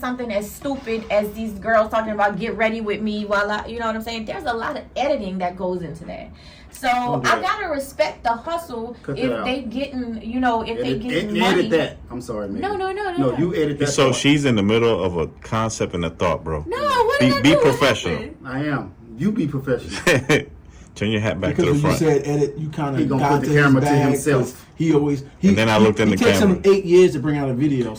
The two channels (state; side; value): identical; both; correlation 1.00